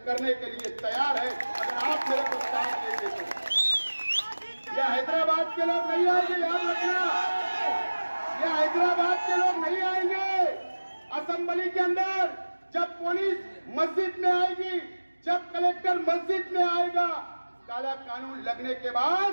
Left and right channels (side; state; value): both; inverted; correlation -1.00